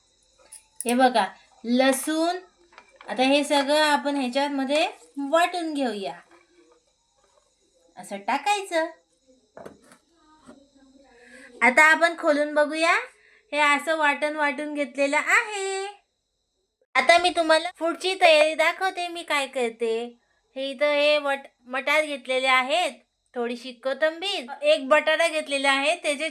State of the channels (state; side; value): identical; both; correlation 1.00